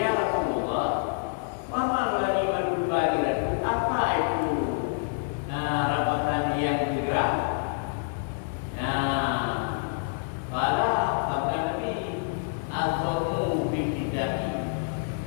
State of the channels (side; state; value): right; silent; digital silence